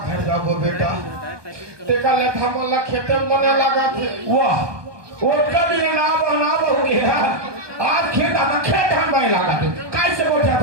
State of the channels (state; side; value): late; left; 1.2 ms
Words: जाबो बेटा तेका ले थामला खेते में मने लगा थे वाह वो कभी ना हो गया आज खेत आना खेत हम में लगा थे कैसे बोझा